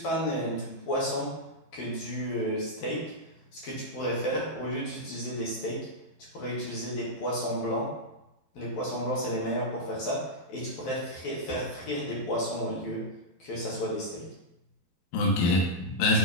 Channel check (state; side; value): late; right; 12 ms